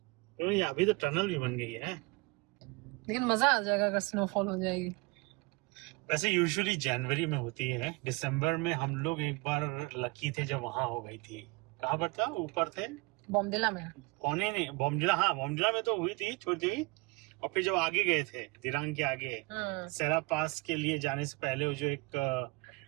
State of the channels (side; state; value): left; quieter; 26.3 dB